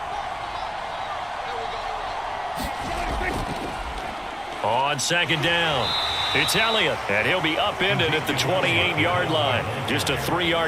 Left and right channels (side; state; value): both; identical; correlation 1.00